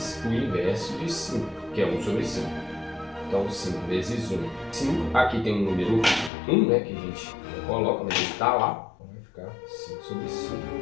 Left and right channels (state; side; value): drops out; right; at 6.3 s